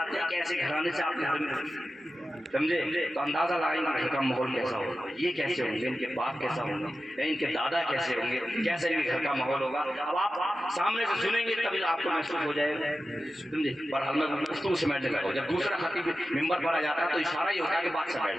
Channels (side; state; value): both; normal; correlation 0.93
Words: ہیں کہ ایسے گھرانے سے آپ کے گھر میں، سمجھے، تو اندازہ لگائیں گے گھر کا ماحول کیسا ہوگا، یہ کیسے ہوں گے، ان کے باپ کیسا ہوں گے، ان کے دادا کیسے ہوں گے، کیسے ان کے گھر کا ماحول ہوگا۔ اب آپ سامنے سے سنیں گے تبھی آپ کو محسوس ہو جائے گا، سمجھے۔ پر ہم نے گفتگو سمیٹنے لگا، جب دوسرا خطیب ممبر پر آ جاتا ہے تو اشارہ یہ ہوتا ہے کہ بات سے